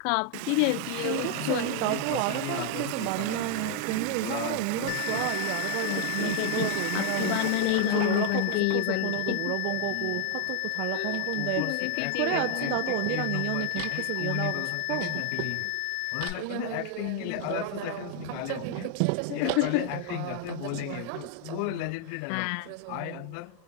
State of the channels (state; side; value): different; both; correlation 0.00